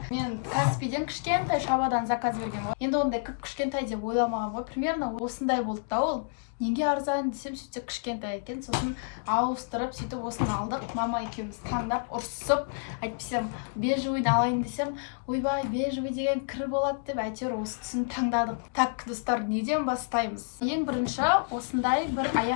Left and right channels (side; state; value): right; silent; digital silence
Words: Мен Каспийден кішкентай шабадан заказ берген ғой. Енді ондай кішкентай деп ойламаған ғой. Примерно осындай болды да ол. Неге арзан десем, сөйтсе кішкентай екен. Сосын ауыстырып, сөйтіп осыны алдық. Мама екеуміз таңдап, ұрсып, айтпасам бежевыйды алайын десем, ойбай, бежевый деген кір болады деп, әйтеуір осы түсін таңдадық. Так, достар, неден бастаймыз? Ең бірінші осындай бір